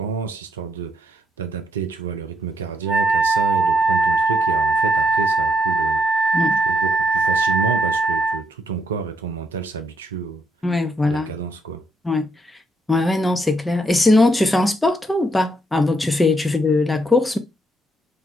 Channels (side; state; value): both; normal; correlation 0.75